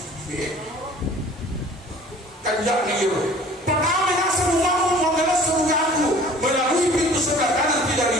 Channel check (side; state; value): both; normal; correlation 0.48